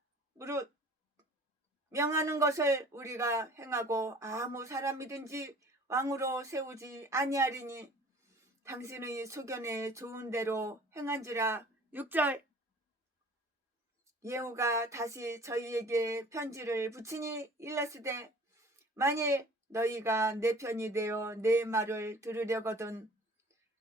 무릇 명하는 것을 우리가 행하고 아무 사람이든지 왕으로 세우지 아니하리니 당신의 소견에 좋은 대로 행한지라. 6절. 예후가 다시 저희에게 편지를 붙이니 일렀으되 만일 너희가 내 편이 되어 내 말을 들으려거든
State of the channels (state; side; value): normal; both; correlation 0.48